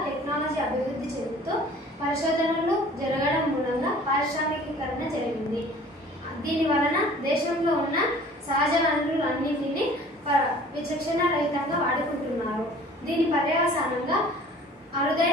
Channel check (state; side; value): normal; both; correlation 0.49